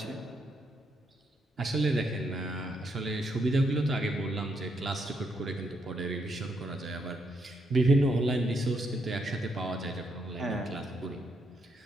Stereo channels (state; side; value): normal; both; correlation 0.77